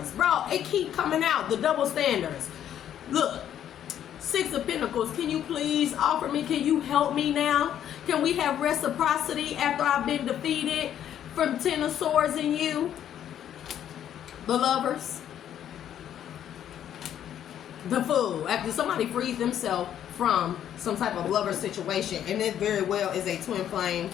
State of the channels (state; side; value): quieter; right; 10.3 dB